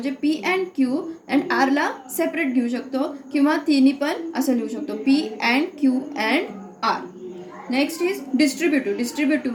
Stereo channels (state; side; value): identical; both; correlation 1.00